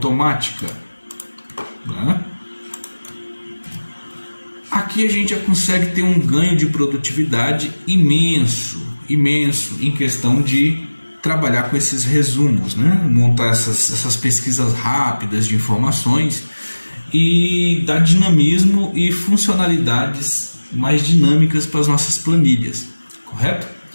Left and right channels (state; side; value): inverted; both; correlation -1.00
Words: né? Aqui a gente já consegue ter um ganho de produtividade imenso em questão de trabalhar com esses resumos, né? Montar essas pesquisas rápidas de informações e dar dinamismo e funcionalidades mais dinâmicas para as nossas planilhas, correto?